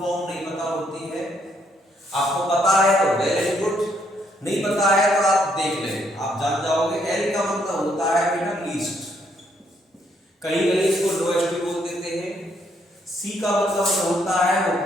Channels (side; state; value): both; normal; correlation 0.72